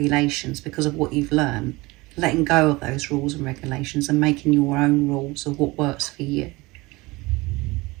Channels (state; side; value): quieter; left; 22.4 dB